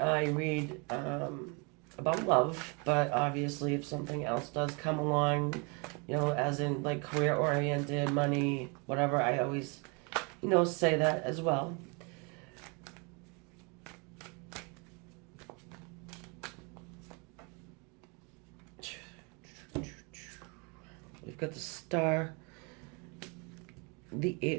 read about love, but obviously if something else does come along, as in like career-oriented, money, whatever, I always, say that as well. We've got the Star, the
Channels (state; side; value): quieter; left; 31.7 dB